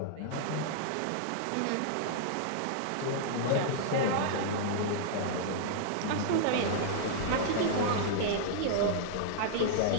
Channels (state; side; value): different; both; correlation -0.01